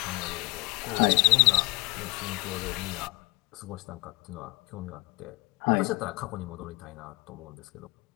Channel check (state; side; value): quieter; right; 24.8 dB